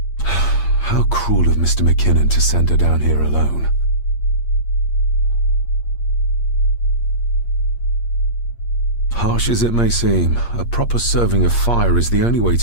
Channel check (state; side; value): late; right; 8.5 ms